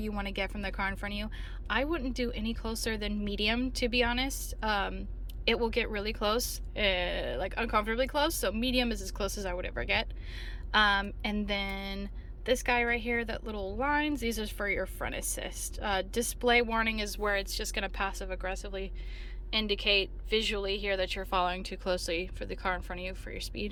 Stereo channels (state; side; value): identical; both; correlation 1.00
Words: want to get from the car in front of you. I wouldn't do any closer than medium, to be honest. It will get really close, like uncomfortably close. So medium is as close as I would ever get. And then this guy right here, that little lines, these are for your front assist. Display warning is where it's just going to passive aggressively indicate visually here that you're following too closely for the car in front of you for your